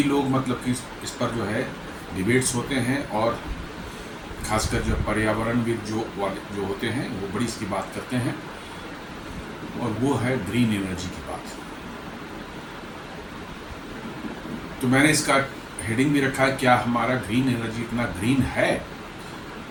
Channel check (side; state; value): both; identical; correlation 1.00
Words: लोग मतलब कि इस पर जो है डिबेट्स होते हैं और खासकर जो पर्यावरणविद जो होते हैं वो बड़ी इसकी बात करते हैं, और वो है ग्रीन एनर्जी की बात। तो मैंने इसका हेडिंग भी रखा है, क्या हमारा ग्रीन एनर्जी इतना ग्रीन है?